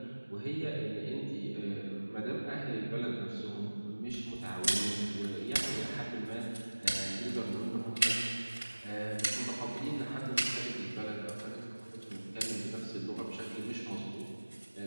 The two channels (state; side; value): inverted; both; correlation -1.00